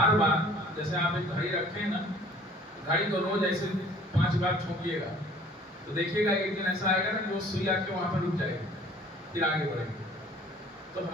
बार जैसे आप एक घड़ी रखें ना, घड़ी को रोज ऐसे 5 बार छूकिएगा तो देखिएगा एक दिन ऐसा आएगा ना कि वो सुई आके वहां पर रुक जाएगी, फिर आगे बढ़ेगी। तो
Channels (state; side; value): normal; both; correlation 0.52